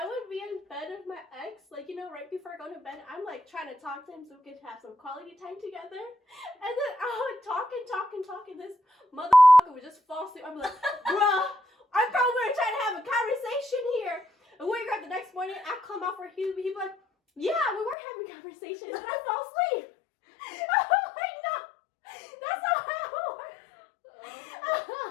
would be in bed with my ex, like, you know, right before I go to bed, I'm like trying to talk to him so we could have some quality time together. And then I would talk, and this motherfucker would just fall asleep. I'm like, bruh, I thought we were trying to have a conversation here. And wake up the next morning, I come out for he'd be like, yeah, we were having a conversation, and then I fell asleep. I'm like, no, that's not how it works.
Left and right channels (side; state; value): right; drops out; at 17.9 s